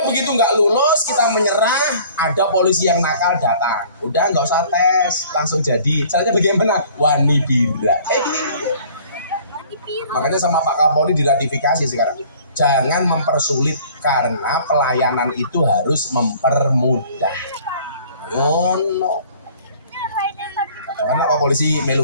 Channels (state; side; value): inverted; both; correlation -0.52